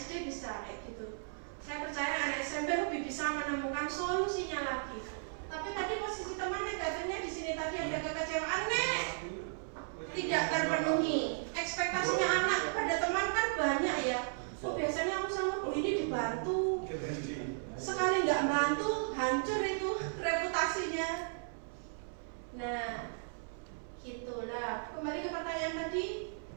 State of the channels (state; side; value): silent; left; 54 dB below the other